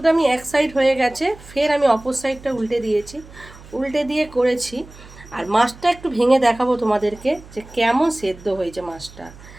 আমি এক সাইড হয়ে গেছে, ফের আমি অপর সাইডটা উল্টে দিয়েছি, উল্টে দিয়ে করেছি। আর মাছটা একটু ভেঙে দেখাবো তোমাদেরকে যে কেমন সেদ্ধ হয়েছে মাছটা।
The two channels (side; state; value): right; noise; hum, 20 dB below the sound